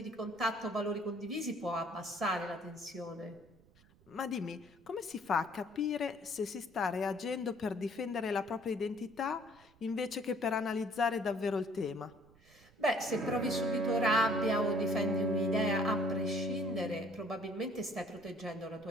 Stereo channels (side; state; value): right; noise; rumble, 28 dB below the sound